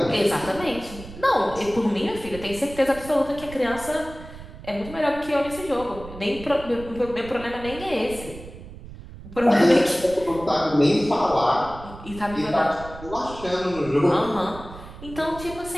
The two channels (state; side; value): noise; right; rumble, 15 dB below the sound